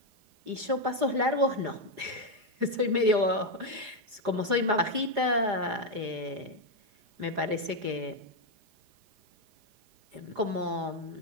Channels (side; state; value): left; late; 4.9 ms